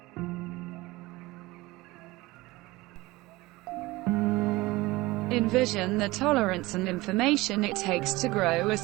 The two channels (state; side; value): quieter; left; 20.5 dB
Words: Envision the tolerance and information it takes to grow a